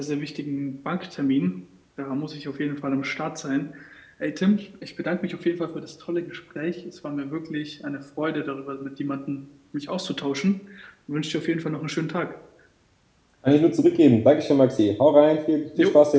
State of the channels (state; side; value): identical; both; correlation 1.00